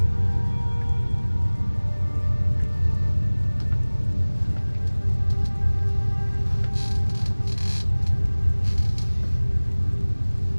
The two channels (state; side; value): inverted; both; correlation -1.00